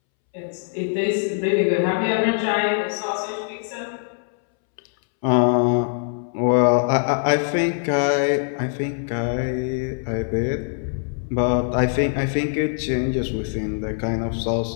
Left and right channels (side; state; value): right; silent; 64 dB below the other